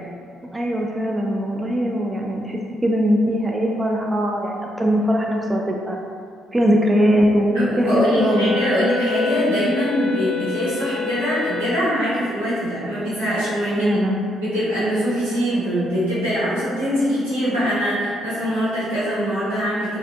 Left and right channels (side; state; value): both; normal; correlation 0.77